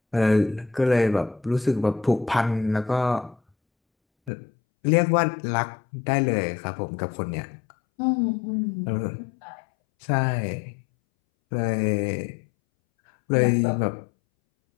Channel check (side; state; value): right; drops out; at 4.3 s